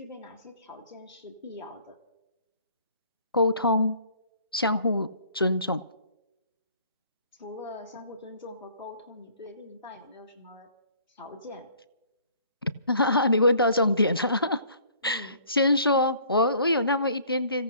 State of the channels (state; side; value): inverted; both; correlation -0.55